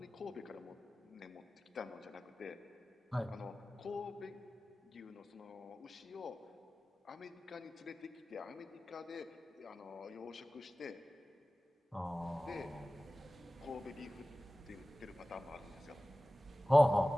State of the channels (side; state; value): both; normal; correlation 0.97